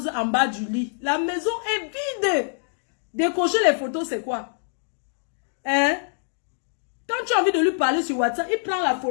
en bas du lit. La maison est vide. Décocher les photos, c'est quoi? Hein? Quand tu as envie de lui parler sur WhatsApp, il prend la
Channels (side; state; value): right; silent; digital silence